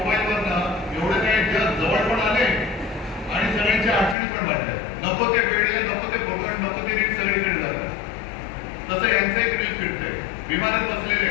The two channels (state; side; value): drops out; right; at 4.2 s